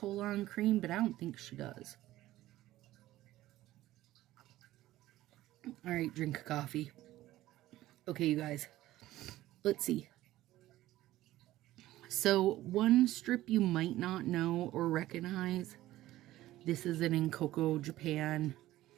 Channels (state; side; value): quieter; left; 15.5 dB